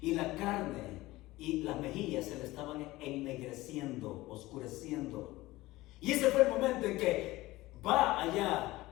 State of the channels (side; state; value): right; quieter; 18.6 dB